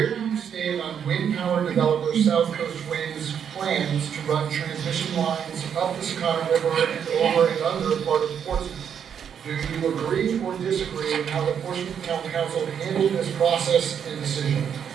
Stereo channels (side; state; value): left; quieter; 8.0 dB